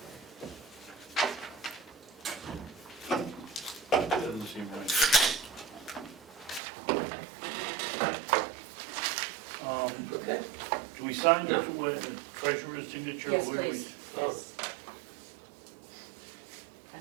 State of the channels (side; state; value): left; drops out; at 6.6 s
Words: Doesn't seem right. Okay. Do we sign No. the treasurer's signature? yes, Where do we- please, yes.